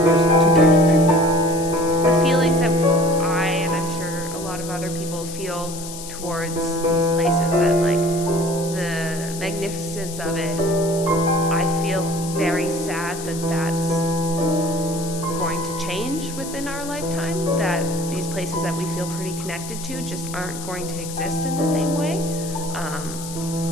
two types of people. The feelings that I, and I'm sure a lot of other people feel towards these places, that like the magnificence of it, I feel very sad that that's going to change within our lifetime, that these places that we feel pretty connected to just aren't going to exist in the same way.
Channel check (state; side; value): noise; left; hiss, 11 dB below the sound